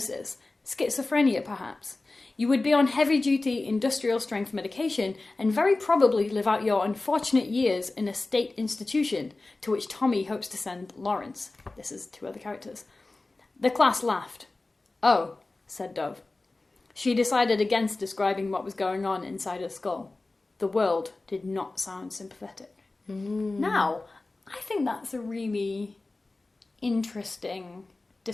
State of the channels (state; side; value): quieter; right; 3.2 dB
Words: schizophrenia perhaps. You would be on heavy-duty industrial-strength medication and very probably live out your unfortunate years in a state institution, to which Tommy hopes to send Lawrence. This is two other characters. The class laughed. Oh, said Dove. She decided against describing what was going on inside her skull. The world did not sound sympathetic. Now, I think that's a really interesting